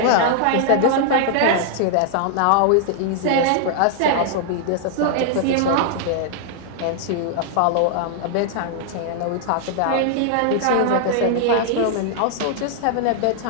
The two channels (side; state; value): both; different; correlation -0.01